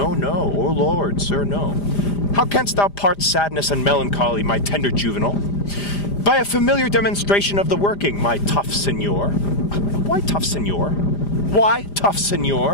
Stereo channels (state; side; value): late; right; 5.0 ms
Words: no, oh Lord, sir, no. How canst thou part sadness and melancholy, my tender juvenile? By a familiar demonstration of the working, my tough senor. Why tough senor? Why tough